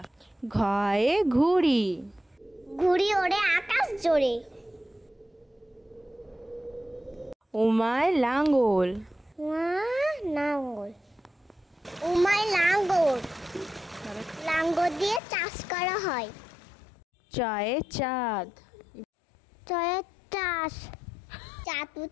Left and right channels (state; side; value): drops out; right; at 15.2 s